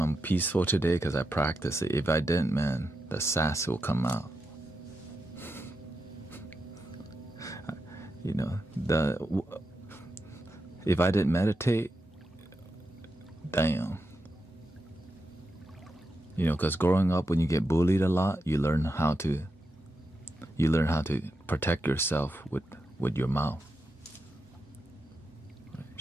I'm peaceful today because I practice it. If I didn't, man, the sass will come out. You know, if I didn't meditate, damn. You know, because growing up, when you get bullied a lot, you learn how to protect yourself with your mouth.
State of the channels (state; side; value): normal; both; correlation 0.87